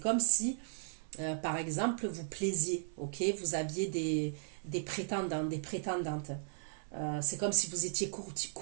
si, par exemple, vous plaisiez, ok? Vous aviez des prétendants, des prétendantes. C'est comme si vous étiez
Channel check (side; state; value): left; silent; 54 dB below the other